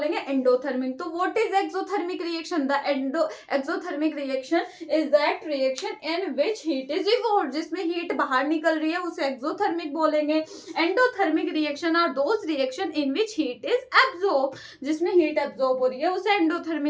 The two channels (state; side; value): identical; both; correlation 1.00